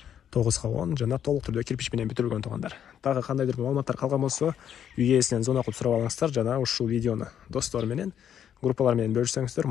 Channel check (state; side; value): quieter; right; 9.3 dB